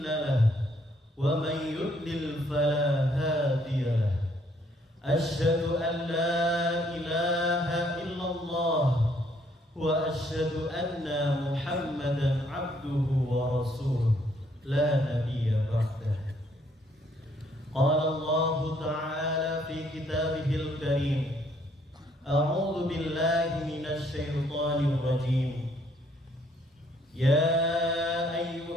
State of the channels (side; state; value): both; normal; correlation 0.67